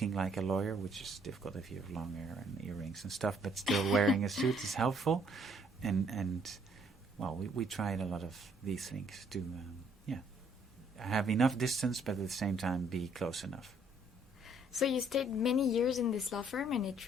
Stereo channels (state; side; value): normal; both; correlation 0.65